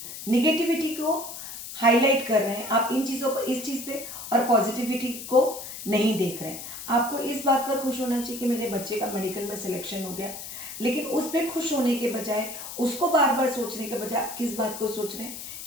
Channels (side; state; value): left; noise; hiss, 10 dB below the sound